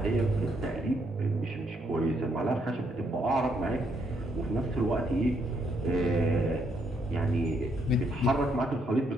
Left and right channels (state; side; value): normal; both; correlation 0.74